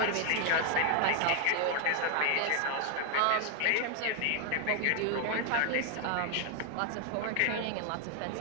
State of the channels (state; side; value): different; both; correlation 0.00